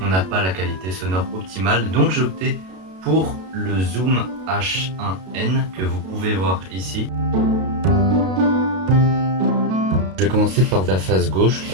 on n'a pas la qualité sonore optimale. Donc j'ai opté pour le Zoom H1N que vous pouvez voir ici. Je vais commencer par la face gauche.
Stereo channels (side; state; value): left; late; 32 ms